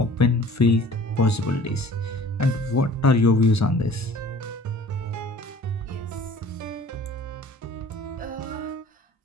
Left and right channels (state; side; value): normal; both; correlation 0.49